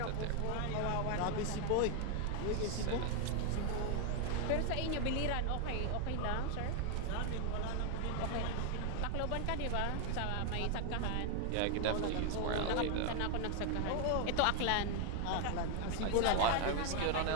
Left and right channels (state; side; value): different; both; correlation 0.01